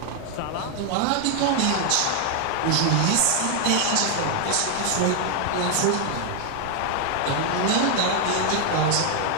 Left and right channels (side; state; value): both; different; correlation 0.00